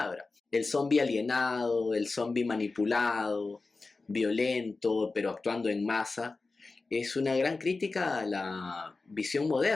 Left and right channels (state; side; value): quieter; right; 3.7 dB